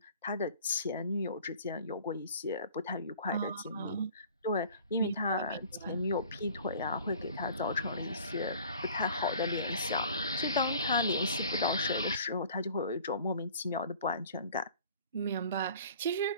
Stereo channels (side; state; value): both; inverted; correlation -0.48